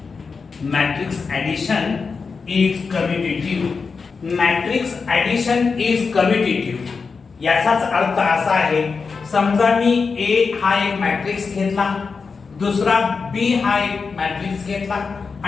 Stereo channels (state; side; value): quieter; right; 4.9 dB